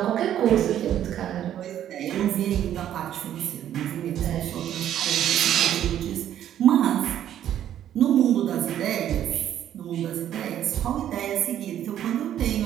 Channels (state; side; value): quieter; left; 11.0 dB